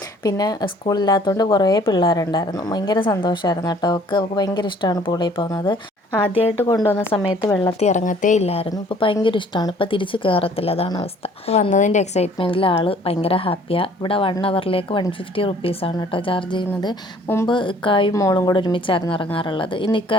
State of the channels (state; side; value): normal; both; correlation 0.56